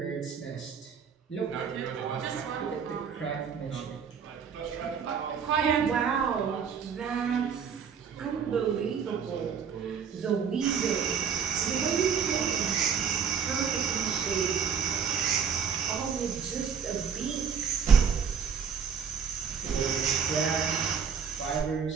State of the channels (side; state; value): left; quieter; 6.8 dB